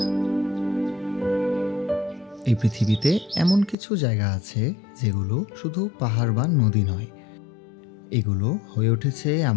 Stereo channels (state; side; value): drops out; right; at 3.8 s